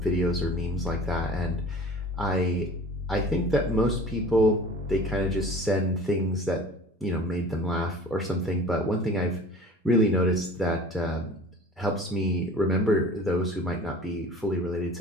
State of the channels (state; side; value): normal; both; correlation 0.43